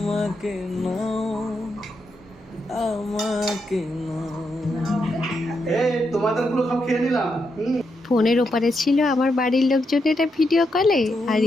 নাও, আমাকে নাও। তোমাদের গুলো সব খেয়ে নিলাম। ফোনের ওপারে ছিল আমার বাড়ির লোকজন এটা ভিডিও কলে, আর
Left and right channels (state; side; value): normal; both; correlation 0.82